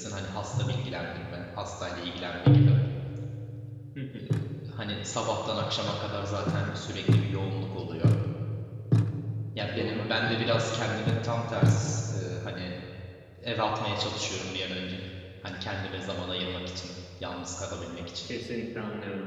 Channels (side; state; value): both; identical; correlation 1.00